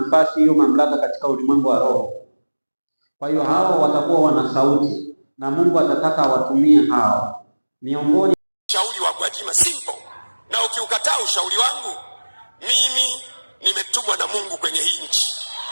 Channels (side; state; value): both; inverted; correlation -1.00